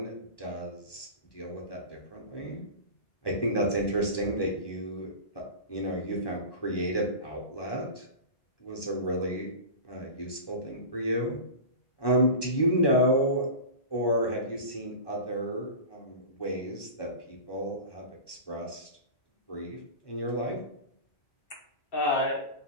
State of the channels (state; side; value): late; right; 1.1 ms